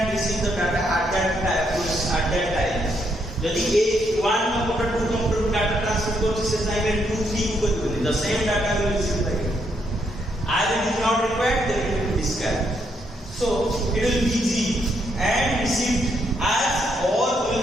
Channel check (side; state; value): both; normal; correlation 0.75